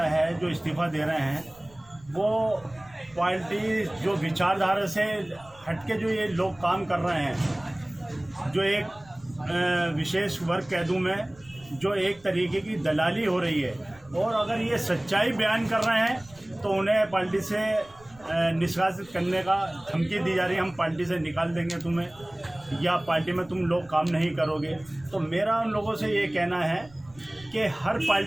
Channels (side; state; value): right; noise; rumble, 25 dB below the sound